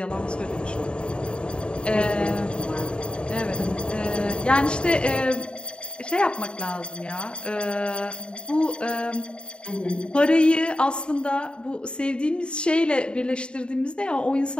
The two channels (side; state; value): right; late; 0.053 ms